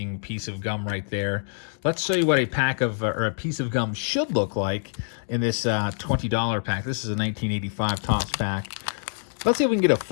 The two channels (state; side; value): silent; right; digital silence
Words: piece of gum right there. Let's show you what a pack of, or a piece of gum should look like in this $20 pack. This is a 1985 Topps pack. Let's see if we can get a